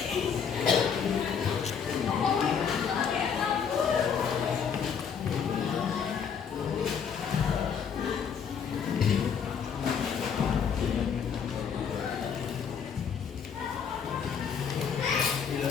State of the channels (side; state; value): right; quieter; 7.0 dB